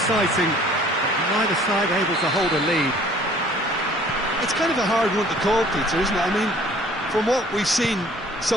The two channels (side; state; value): both; normal; correlation 0.54